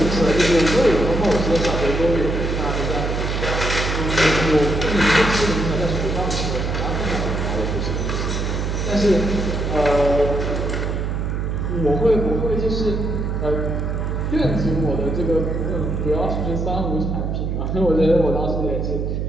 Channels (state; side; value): noise; right; hum, 1 dB below the sound